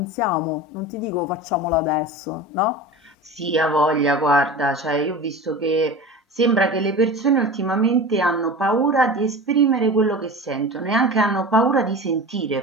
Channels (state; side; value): normal; both; correlation 0.32